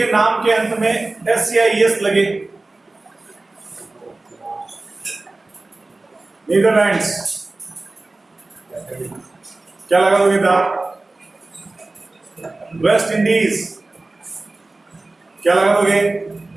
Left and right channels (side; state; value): left; quieter; 3.1 dB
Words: नाम के अंत में SCIS लगे, नीदरलैंड्स, क्या लगा दोगे? दा। वेस्ट इंडीज, क्या लगा दोगे?